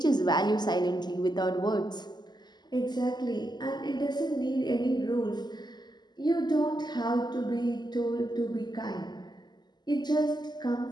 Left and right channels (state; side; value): late; right; 0.21 ms